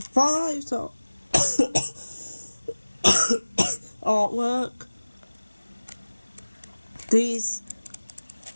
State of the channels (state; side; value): inverted; both; correlation -1.00